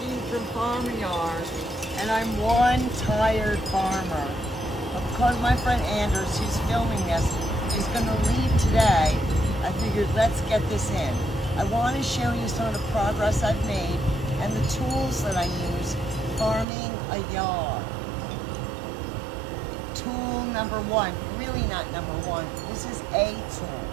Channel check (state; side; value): drops out; left; at 16.7 s